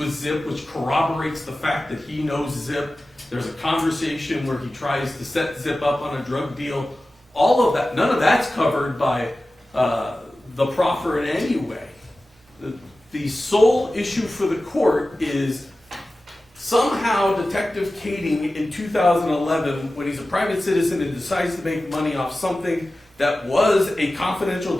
Zip, which corroborates the fact that he knows Zip. There's a conversation where he tries to set Zip up on a drug deal. All of that, none of that's covered by the proffer in any way. The sole issue for the court is somehow Detective Kading in 2011, when he's a private citizen and decides to make money off something that was a confidential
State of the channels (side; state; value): both; normal; correlation 0.95